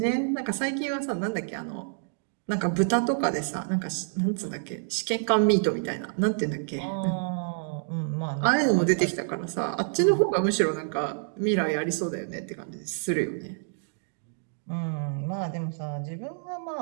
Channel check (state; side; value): silent; left; digital silence